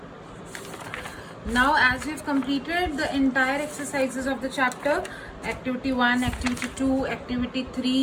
Now, as we've completed the entire exercises of the chapter, activity 1, activity 2, activity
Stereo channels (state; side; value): identical; both; correlation 1.00